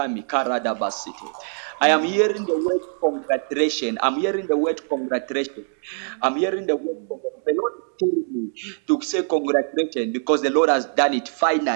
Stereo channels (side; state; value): left; silent; 58 dB below the other